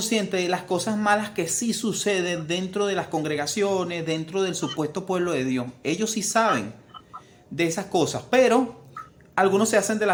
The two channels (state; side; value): identical; both; correlation 1.00